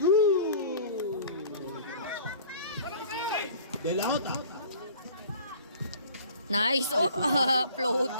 Good. De La Jota. Nice. Oh,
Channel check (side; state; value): both; inverted; correlation -0.47